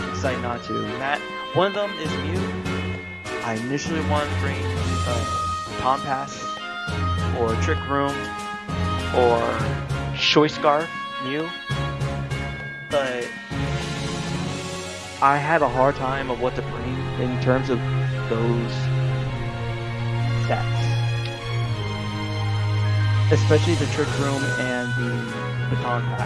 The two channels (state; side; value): identical; both; correlation 1.00